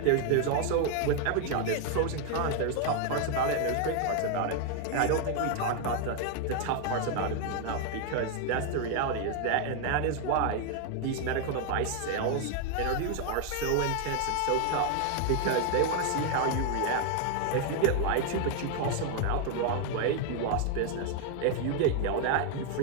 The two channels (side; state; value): both; different; correlation 0.00